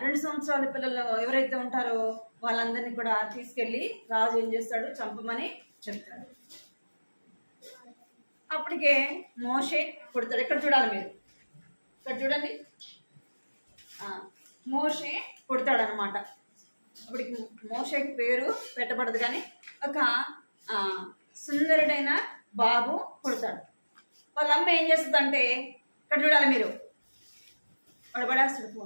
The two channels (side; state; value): both; inverted; correlation -1.00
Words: 2 సంవత్సరాల పిల్లలు ఎవరైతే ఉంటారో వాళ్ళందరినీ కూడా తీసుకెళ్ళి రాజు ఏం చేస్తాడు? చంపమని చెప్తాడు. అప్పటికే మోషే పుడతాడు. ఇక్కడ చూడాలి మీరు, ఇక్కడ చూడండి, మోషే పుడతాడు అనమాట. అప్పటికి మోషేకి పేరు పెట్టబడదు, కానీ ఒక సుందరుడైన బాబు పుడతాడు. వాళ్ళ అమ్మ ఏం చేస్తుందంటే, ఇక్కడ చూడాలి మీరు, పడబడేస్తాడు